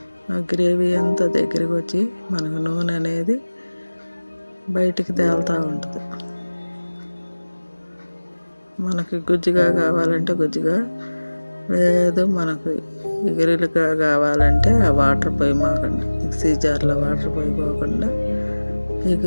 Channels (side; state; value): both; inverted; correlation -1.00